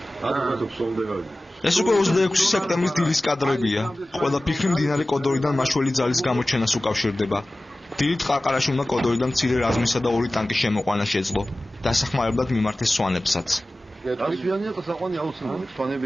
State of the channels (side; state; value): both; normal; correlation 0.97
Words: ადრე ფსონდე გავიდეთ. ეს უკვე 26 სექტემბრის დილის კადრებია. ყველა ფიქრი მდინარე კოდორიდან მაშველი ძალის გამოჩენას უკავშირდება. დილით ყარყარაში უნდა კოდორიდან მცირე რაზმისა და 2 ტანკის შემოყვანა შეძლო. დასახმარებლად მიმართეს სვანებსაც.